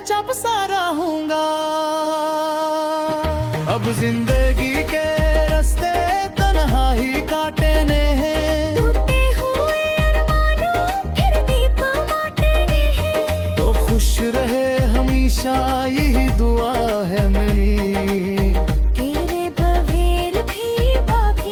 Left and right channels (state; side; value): identical; both; correlation 1.00